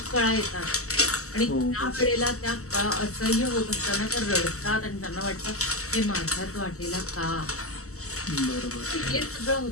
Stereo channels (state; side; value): late; right; 0.64 ms